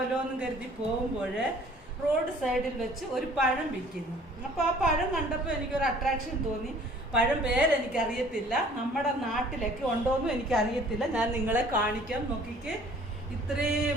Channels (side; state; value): both; normal; correlation 0.53